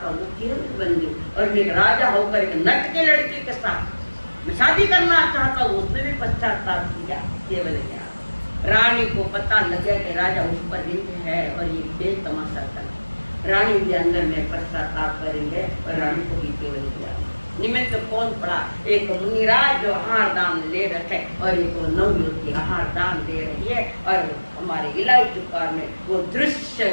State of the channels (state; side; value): inverted; both; correlation -1.00